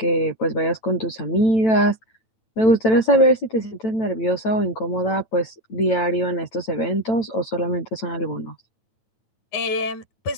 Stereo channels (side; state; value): right; late; 9.0 ms